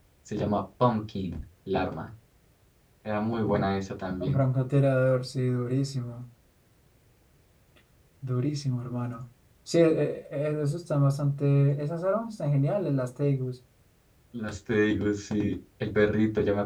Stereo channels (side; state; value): both; identical; correlation 1.00